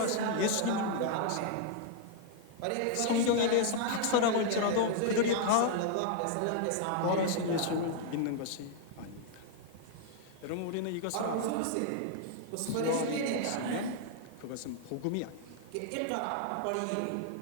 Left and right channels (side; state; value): both; different; correlation 0.00